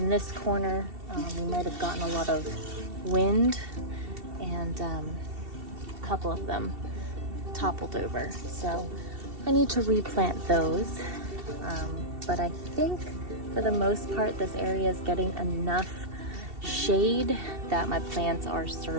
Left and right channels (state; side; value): late; left; 2.7 ms